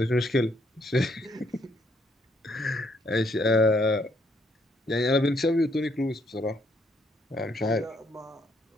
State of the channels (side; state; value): both; normal; correlation 0.71